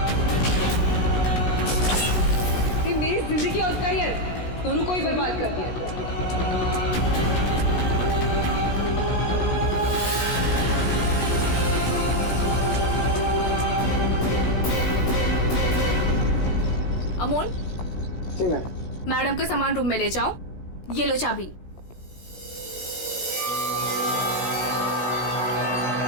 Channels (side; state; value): right; late; 17 ms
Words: मेरी जिंदगी और करियर दोनों को ही बर्बाद कर दिया। अमोल, जी मैम। मैडम का सामान रूम में ले जाओ। ये लो चाबी।